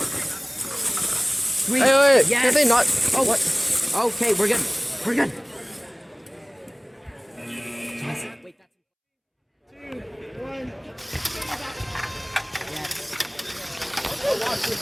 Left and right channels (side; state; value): both; identical; correlation 1.00